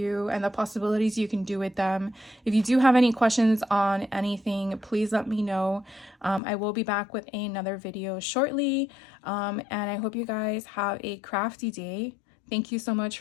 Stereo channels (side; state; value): right; drops out; at 6.4 s